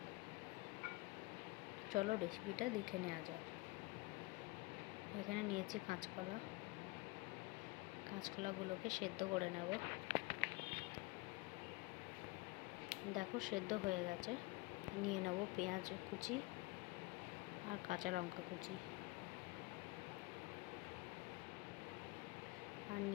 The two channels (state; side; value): quieter; right; 23.0 dB